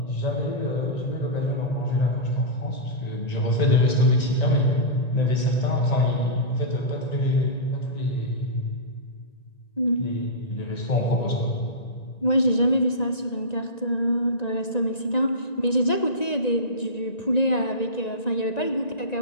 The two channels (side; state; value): right; late; 1.9 ms